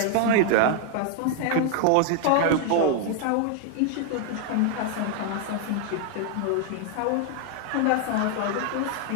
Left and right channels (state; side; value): different; both; correlation 0.00